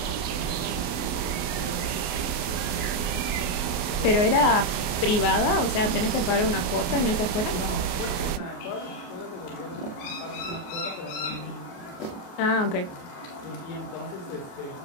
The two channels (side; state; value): right; late; 28 ms